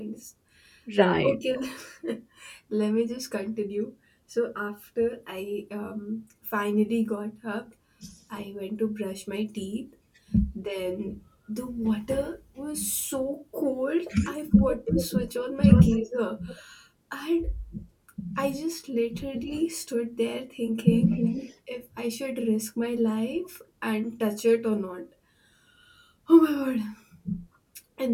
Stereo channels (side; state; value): both; identical; correlation 1.00